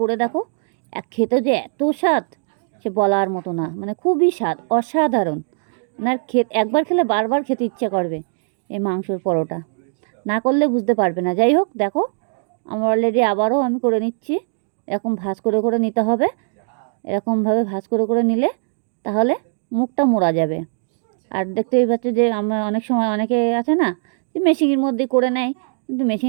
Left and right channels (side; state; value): left; silent; digital silence